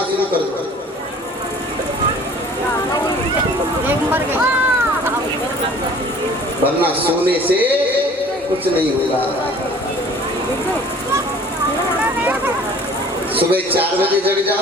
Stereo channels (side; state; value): both; normal; correlation 0.49